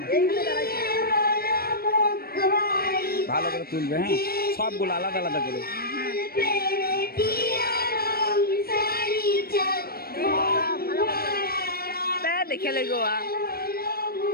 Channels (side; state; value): right; late; 0.44 ms